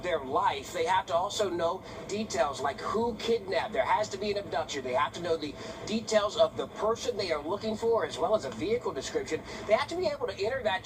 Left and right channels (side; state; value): both; identical; correlation 1.00